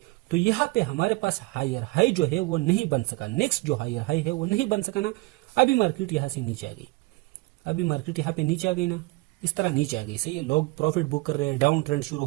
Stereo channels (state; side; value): quieter; left; 22.9 dB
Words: तो यहाँ पे हमारे पास हायर हाई जो है वो नहीं बन सका, नेक्स्ट जो हायर हाई है वो नहीं बन सका ना। अभी मार्केट यहाँ से नीचे आ गई, अभी मार्केट यहाँ पे नीचे आ गई ना, इस तरह नीचे आ गई, सही है। लोग प्रॉफिट बुक कर रहे हैं, डाउन ट्रेंड शुरू